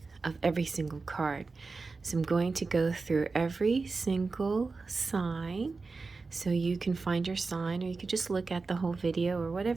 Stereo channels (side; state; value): left; quieter; 4.1 dB